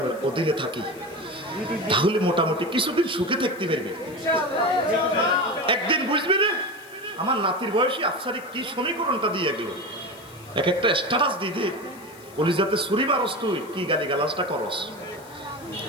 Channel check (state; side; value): noise; left; hiss, 23 dB below the sound